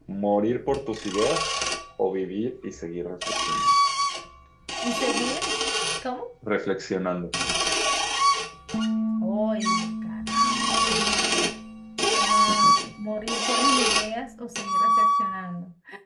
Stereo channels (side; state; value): both; identical; correlation 1.00